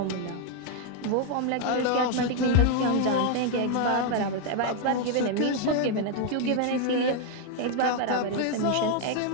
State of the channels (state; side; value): different; both; correlation 0.00